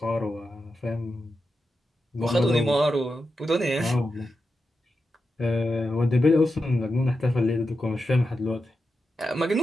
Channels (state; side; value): normal; both; correlation 0.89